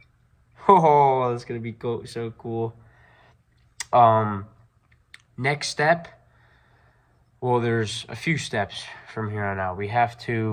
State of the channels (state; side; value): identical; both; correlation 1.00